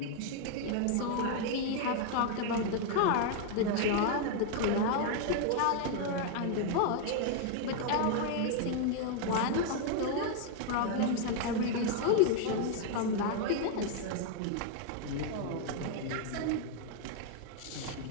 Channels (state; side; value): different; both; correlation 0.00